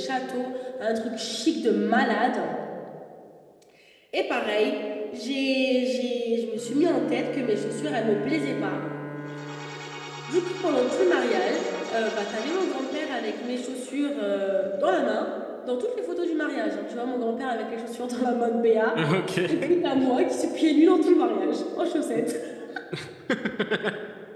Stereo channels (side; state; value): both; identical; correlation 1.00